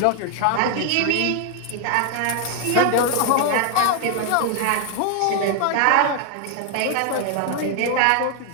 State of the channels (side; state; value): both; different; correlation 0.00